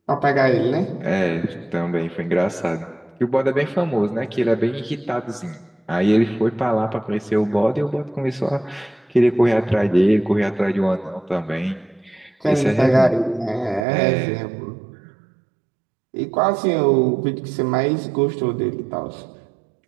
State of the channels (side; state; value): left; drops out; at 13.9 s